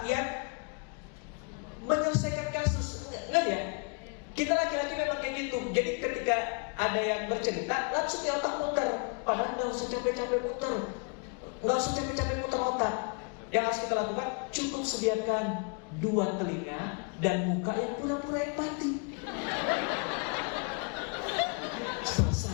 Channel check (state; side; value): quieter; right; 38.4 dB